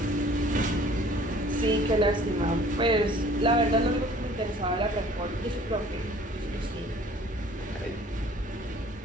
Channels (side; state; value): both; normal; correlation 0.52